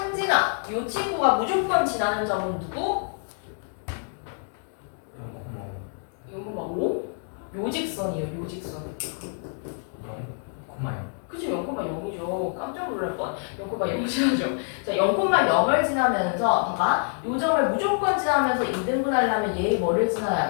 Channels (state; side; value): silent; right; 55 dB below the other